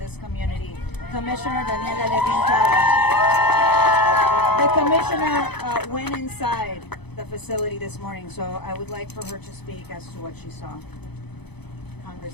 community, Commissioner Daniela Levin Cava. The Commissioner went inside the facility this morning, so I would like for her to speak as to what she saw.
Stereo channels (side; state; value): right; late; 0.98 ms